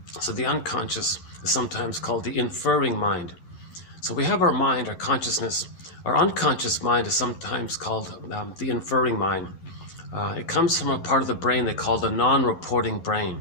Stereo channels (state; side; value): late; right; 11 ms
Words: So the unconscious is sometimes called the inferring mind. So we have our mind, our consciousness. Our unconscious mind is sometimes called the inferring mind. It comes from a part of the brain they call the non-reporting